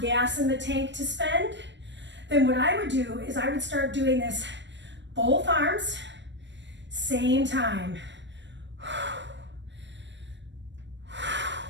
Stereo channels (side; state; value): left; late; 0.53 ms